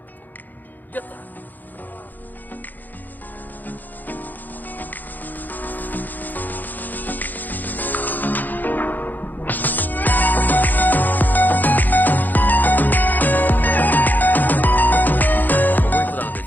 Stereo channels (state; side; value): late; right; 0.085 ms